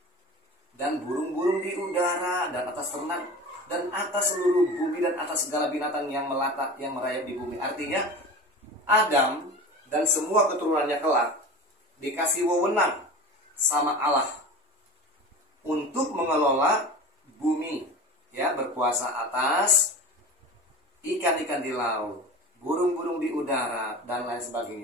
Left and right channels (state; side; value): normal; both; correlation 0.33